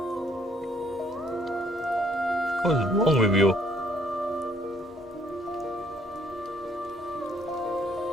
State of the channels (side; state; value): both; normal; correlation 0.65